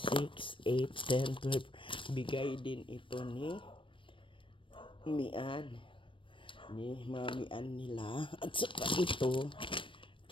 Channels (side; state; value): right; late; 0.25 ms